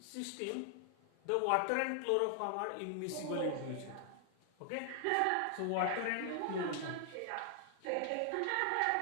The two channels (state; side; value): different; both; correlation 0.00